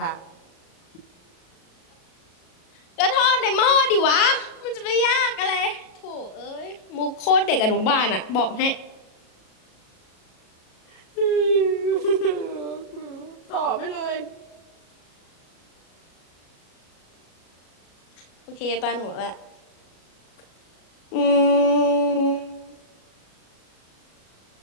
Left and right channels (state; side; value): late; right; 37 ms